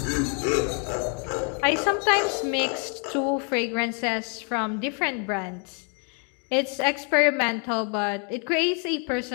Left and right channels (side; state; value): right; quieter; 39.5 dB